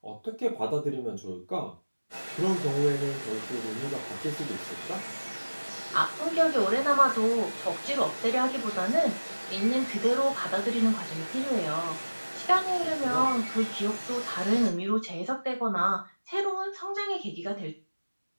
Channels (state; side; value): inverted; both; correlation -1.00